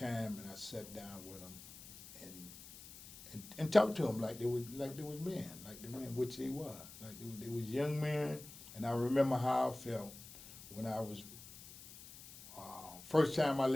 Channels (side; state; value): left; noise; hiss, 16 dB below the sound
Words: and I sat down with them and talked to them like they was men, which they were. Like they was young men. And I remember how I felt when I was first time I